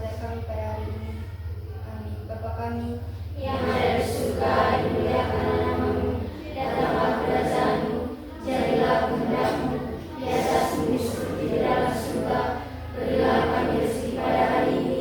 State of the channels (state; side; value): identical; both; correlation 1.00